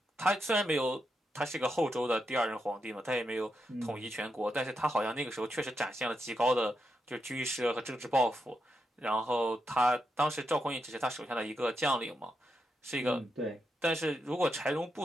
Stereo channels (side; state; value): both; normal; correlation 0.84